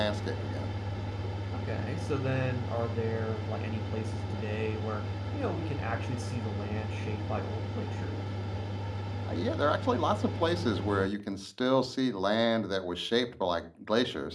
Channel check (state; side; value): identical; both; correlation 1.00